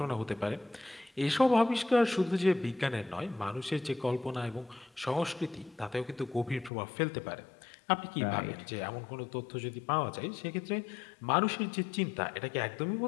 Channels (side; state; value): right; drops out; at 6.7 s